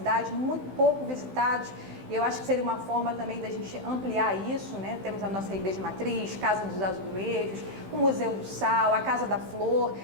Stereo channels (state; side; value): late; left; 15 ms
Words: muito pouco visitados, e eu acho que seria uma forma também da gente ampliar isso, né? Temos a nossa Igreja Matriz, Casa dos Azulejos, o Museu do Sal, a Casa da Flor.